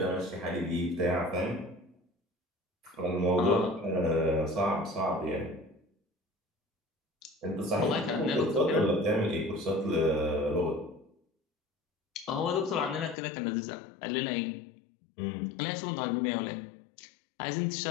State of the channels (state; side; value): drops out; right; at 13.2 s